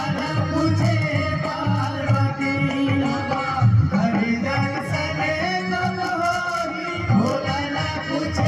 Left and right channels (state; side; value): identical; both; correlation 1.00